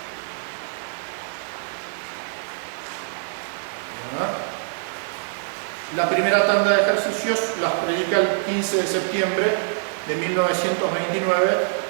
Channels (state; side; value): silent; left; 62 dB below the other